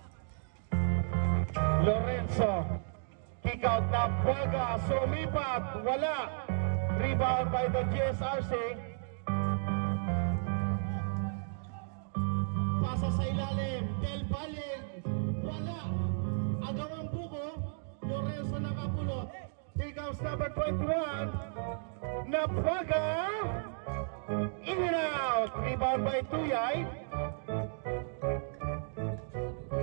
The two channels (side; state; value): left; silent; digital silence